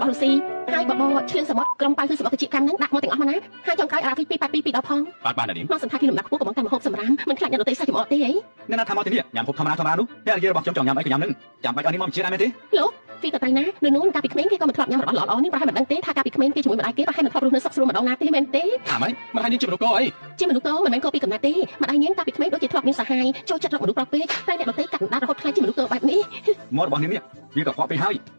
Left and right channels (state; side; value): inverted; both; correlation -1.00